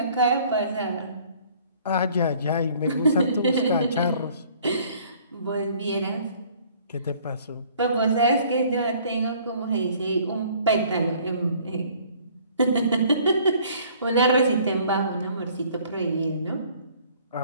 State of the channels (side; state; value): both; inverted; correlation -0.56